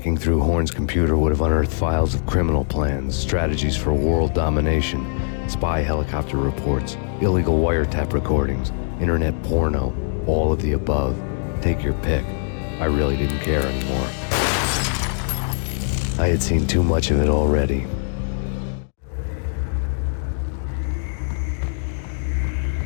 through Horn's computer would have unearthed files of criminal plans, strategies for world domination, spy helicopter reports, illegal wiretap recordings, internet porno, all of the above. Take your pick. I really didn't care anymore. I had seen too much of it already.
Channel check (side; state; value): right; silent; 64 dB below the other